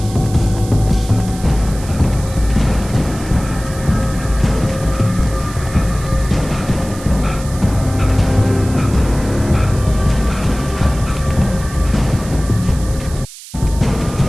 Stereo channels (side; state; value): right; noise; hiss, 16 dB below the sound